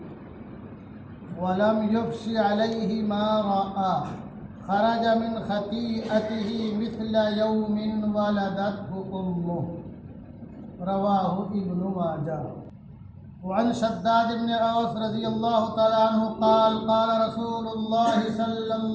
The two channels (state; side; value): identical; both; correlation 1.00